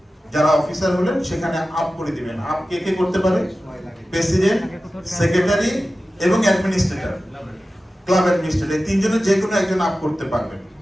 যারা অফিসার হলেন সেখানে আপ করে দিবেন। আপ কে কে করতে পারে? প্রেসিডেন্ট, সেক্রেটারি এবং অ্যাডমিনিস্ট্রেটর, ক্লাব অ্যাডমিনিস্ট্রেটর, তিনজনের যে কোনো একজন আপ করতে পারবেন।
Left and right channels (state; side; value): normal; both; correlation 0.95